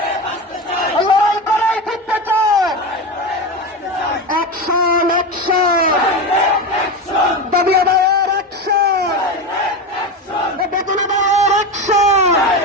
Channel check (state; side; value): normal; both; correlation 0.20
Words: লড়াই করেই জিততে চাই। অ্যাকশন অ্যাকশন, দাবি আদায়ের অ্যাকশন, বেতন আদায়ের অ্যাকশন,